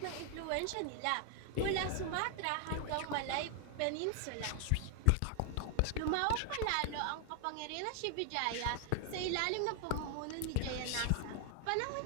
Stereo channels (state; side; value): different; both; correlation 0.00